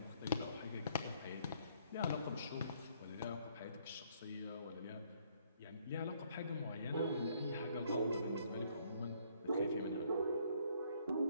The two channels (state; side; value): inverted; both; correlation -0.66